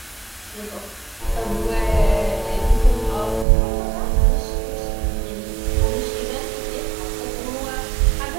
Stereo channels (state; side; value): drops out; left; at 3.5 s